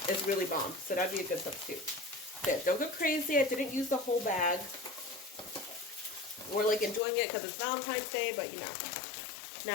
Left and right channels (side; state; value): right; drops out; at 7.0 s